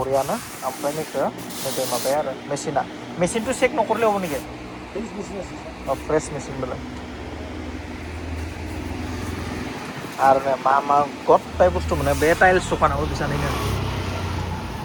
ओमफ्राय नैखौ नैबे माबाया आरो मेसिनथ' चेक न'खरलेयाव नेকি फ्रेश मेसिन बेलाय आरो मा गथाय बुस्थु मोनो बे टाइल्स दखानाव बिसानैनो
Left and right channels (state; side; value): identical; both; correlation 1.00